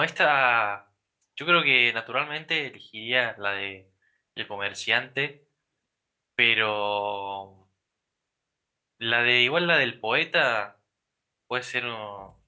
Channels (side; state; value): both; identical; correlation 1.00